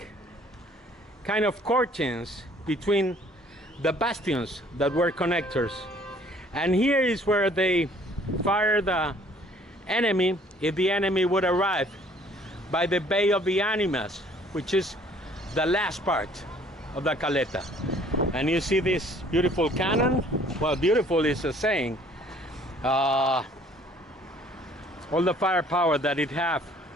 kind of curtains between the bastions that were connectors. And here is where they fire the enemy if the enemy would arrive by the Bay of the Animas, which is the last part of the caleta. And you see this beautiful cannon. Well, beautiful is a saying. All the firepower that it have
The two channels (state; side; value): normal; both; correlation 0.57